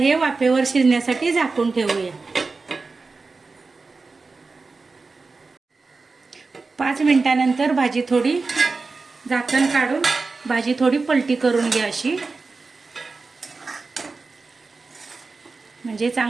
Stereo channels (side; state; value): left; quieter; 4.0 dB